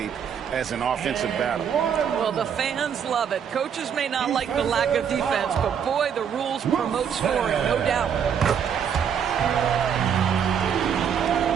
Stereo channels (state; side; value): quieter; left; 7.9 dB